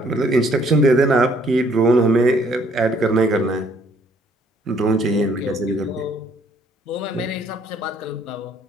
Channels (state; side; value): normal; both; correlation 0.63